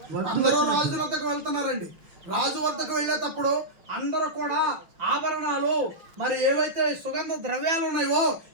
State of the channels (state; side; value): late; left; 6.0 ms